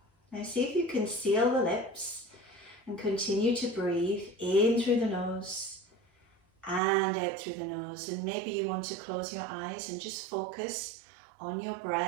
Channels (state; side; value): drops out; left; at 6.8 s